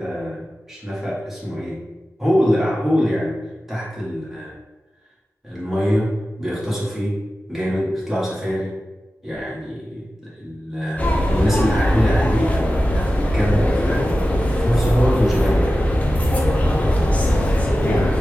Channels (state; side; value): normal; both; correlation 0.94